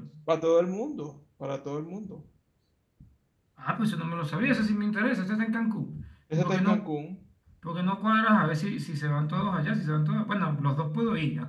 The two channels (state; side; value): identical; both; correlation 1.00